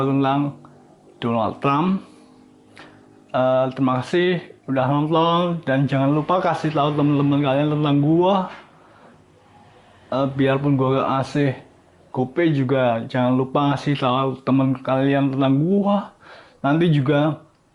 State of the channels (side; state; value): both; identical; correlation 1.00